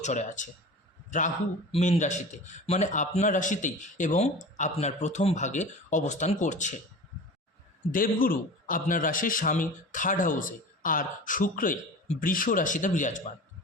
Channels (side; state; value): both; normal; correlation 0.35